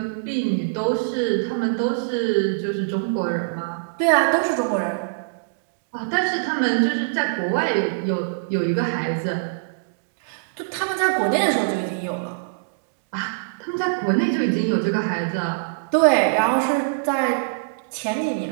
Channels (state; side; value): quieter; left; 33.3 dB